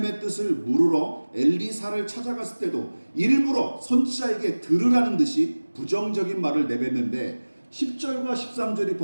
뜻을 물으러 엘리사를 찾아갔을 때도 일부러 선지자에게 들으라는 듯이 부정적인 말을 내뱉는데, 10절과 13절이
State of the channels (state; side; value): inverted; both; correlation -1.00